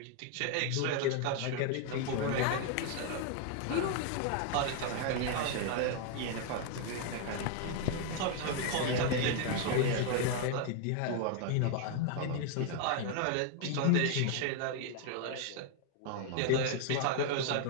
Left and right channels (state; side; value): different; both; correlation 0.00